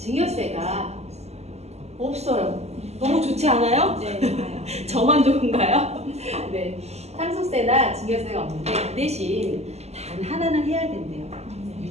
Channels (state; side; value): late; left; 0.31 ms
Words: 없어요. 너무 좋지 않아요? 네. 저만 좋은가요? 네. 상속세나 증여세가 없는데 그 대신 단 하나는 해야 된대요.